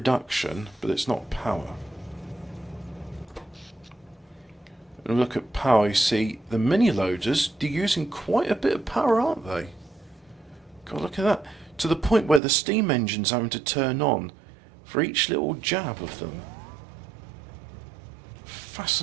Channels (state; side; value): drops out; left; at 12.4 s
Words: but it's not power. And look at power, you see the mini loaders, they're using quite a bit of power, aren't they? God, look at that. To the point where the steam engine's having to turn on for each little jab of them.